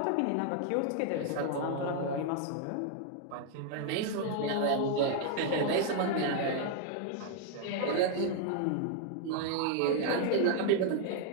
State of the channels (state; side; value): different; both; correlation 0.00